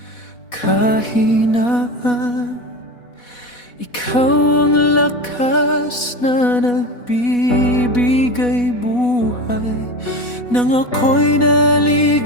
kahinaan, ikaw ang lakas na nagbibigay buhay. Nang ako'y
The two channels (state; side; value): late; right; 4.1 ms